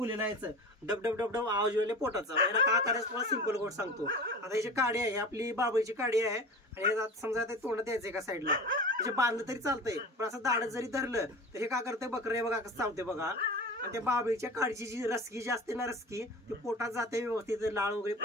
आहे। डब डब डब डब आवाज येईल पोटाचा। याला काय करायचं तुम्हाला सिंपल गोष्ट सांगतो। आता याची काडी आहे, आपली बाबळीची काडी आहे, आणि समजा ते तोंडात द्यायचं एका साईडला, म्हणजे बांधलं तरी चालतंय, पण असं दाढत जरी धरलं तर हे काय करतंय, बकरे बघा कसं चावते बघा। आणि त्या बाबळीच्या काडीची जी रसकी जी असते ना, रसकी ती पोटात जाते व्यवस्थित, लाळ वगैरे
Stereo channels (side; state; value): both; normal; correlation 0.34